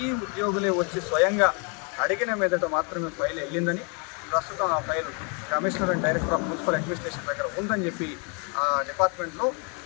ఉద్యోగులే వచ్చి స్వయంగా అడిగిన మీదట మాత్రమే ఫైల్ వెళ్ళిందని, ప్రస్తుతం ఆ file commissioner and director of municipal administration దగ్గర ఉందని చెప్పి ఆ డిపార్ట్మెంట్లో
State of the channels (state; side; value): quieter; right; 35.6 dB